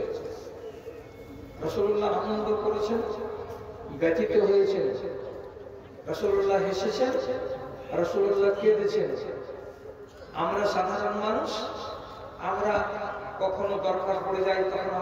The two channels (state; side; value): identical; both; correlation 1.00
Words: রাসূলুল্লাহ আনন্দ করেছেন, ব্যথিত হয়েছেন। রাসূলুল্লাহ হেসেছেন, রাসূলুল্লাহ কেঁদেছেন। আমরা সাধারণ মানুষ, আমরা কখনো দরকার পড়ে যায় তখন